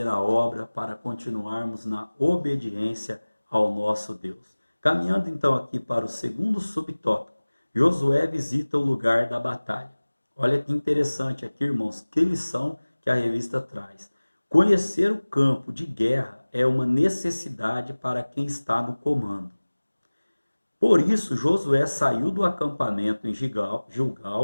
a obra, para continuarmos na obediência ao nosso Deus. Caminhando então aqui para o segundo subtópico, Josué visita o lugar da batalha. Olha que interessante aqui, irmãos, que lição que a revista traz. Conhecer o campo de guerra é uma necessidade para quem está no comando. Por isso, Josué saiu do acampamento em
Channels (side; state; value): both; inverted; correlation -1.00